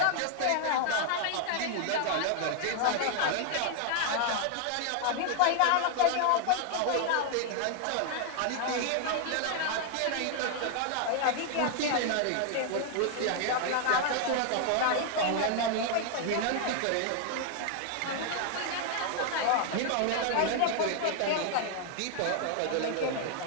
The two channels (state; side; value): different; both; correlation 0.00